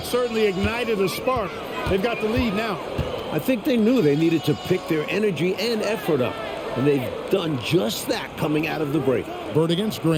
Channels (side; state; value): both; identical; correlation 1.00